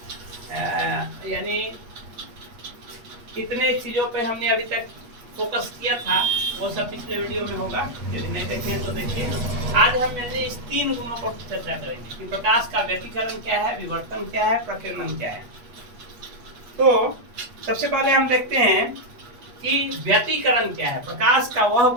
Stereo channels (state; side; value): late; left; 8.4 ms